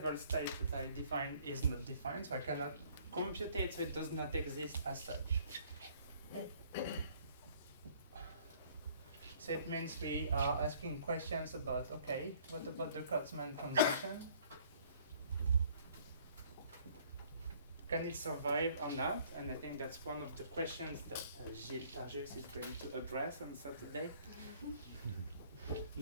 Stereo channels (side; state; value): both; inverted; correlation -0.58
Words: states that I define is not defined, so I cannot compute it, so it does not exist as such. Okay. So it means we are asking questions about, okay, what about the Kurtzman transition? Can it survive or not? And I think that's one of the questions that Gilles Targis is going to address on Saturday.